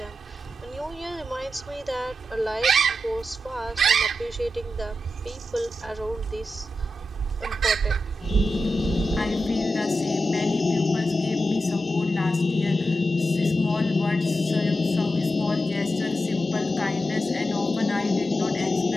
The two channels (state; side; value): normal; both; correlation 0.90